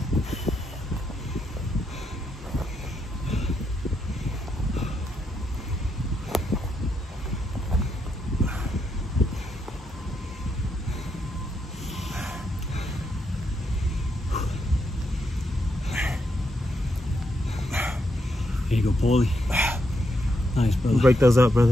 Here you go, Paulie. Nice, brother. Break those up,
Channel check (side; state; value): both; normal; correlation 0.80